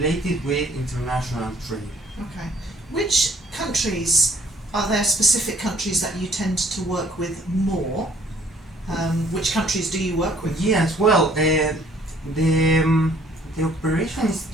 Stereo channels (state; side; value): normal; both; correlation 0.60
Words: with international trade. Okay. Which countries Are there specific countries that you tend to work with more? Which countries do you work with? Yes, well, the operation is